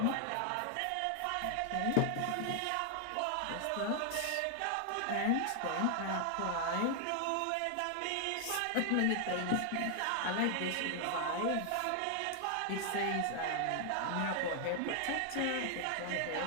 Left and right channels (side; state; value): both; different; correlation 0.00